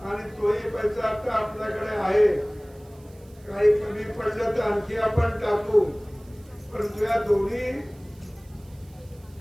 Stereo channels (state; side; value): noise; right; hiss, 29 dB below the sound